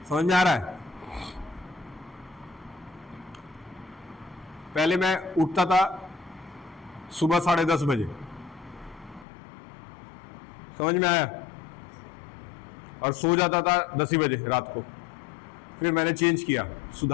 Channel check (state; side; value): drops out; right; at 9.2 s